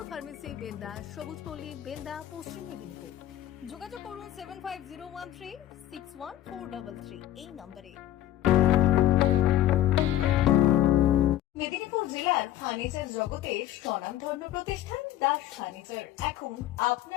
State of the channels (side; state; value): right; quieter; 13.0 dB